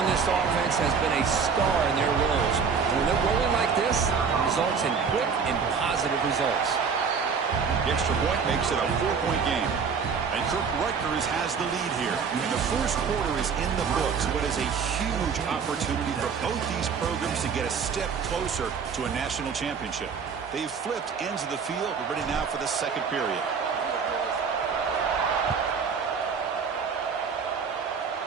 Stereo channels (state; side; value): quieter; left; 5.9 dB